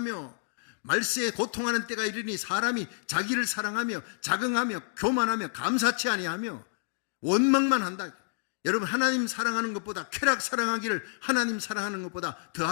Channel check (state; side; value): silent; right; digital silence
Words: 말세에 고통하는 때가 이르니 사람이 자기를 사랑하며 자긍하며 교만하며 감사치 아니하며 원망만 한다. 여러분, 하나님 사랑하는 것보다 쾌락 사랑하기를 하나님 사랑하는 것보다